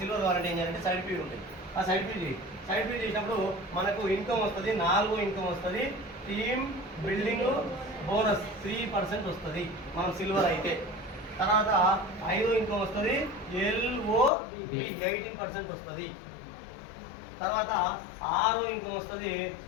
సిల్వర్ కావాలంటే ఏం చేయాలంటే సైడ్ పీవీలు ఉంటాయి. ఆ సైడ్ పీవీ చేసినప్పుడు మనకు ఇన్కమ్ వస్తుంది, 4 ఇన్కమ్ వస్తుంది. టీమ్ బిల్డింగ్ బోనస్ 3% వస్తుంది మనం సిల్వర్ అయితే. తర్వాత 5 ఇన్కమ్ వస్తుంది, LOB 18% వస్తుంది. తర్వాత 6 ఇన్కమ్ వస్తుంది,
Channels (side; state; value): right; drops out; at 14.3 s